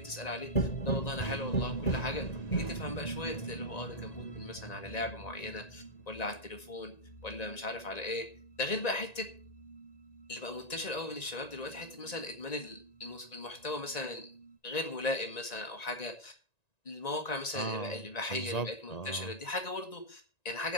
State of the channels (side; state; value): right; late; 1.9 ms